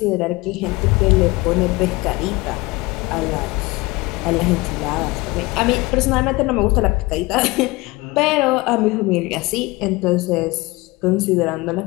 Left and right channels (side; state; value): right; quieter; 22.6 dB